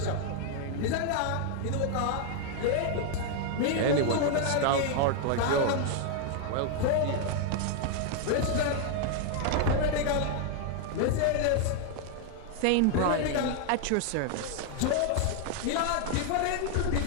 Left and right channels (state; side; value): different; both; correlation 0.00